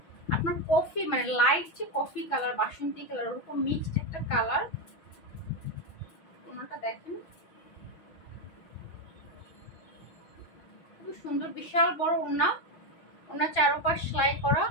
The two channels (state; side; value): late; right; 6.1 ms